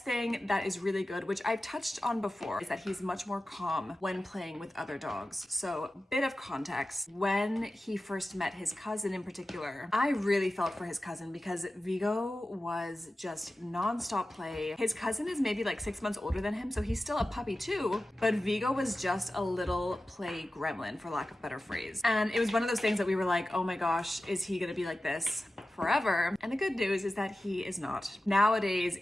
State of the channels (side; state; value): both; normal; correlation 0.94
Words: thing that is really good, which I've touched on before, is that he's much more calm when playing with other dogs. So, bit of context. When he first met his cousin in particular, I really felt for his cousin because Vigo was just non-stop play. His cousin is maybe like 6 months older than him, so he's still a puppy too, but Vigo was just a little play gremlin, for lack of a better phrase. And it was one of those things that we were like, oh my gosh, is he gonna be like this forever? And the good news is that he is not. Nowadays,